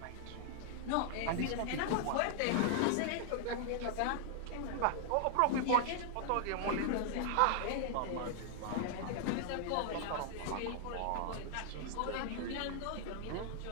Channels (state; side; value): different; both; correlation 0.00